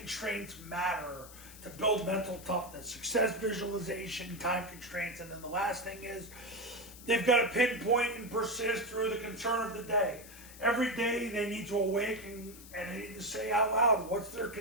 matter to build mental toughness. Success visualization, time constraints, and then the last thing is they've got to pinpoint and persist through the concern of the day. Every day they need to awaken and they need to say out loud, what's their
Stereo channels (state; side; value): noise; left; hiss, 17 dB below the sound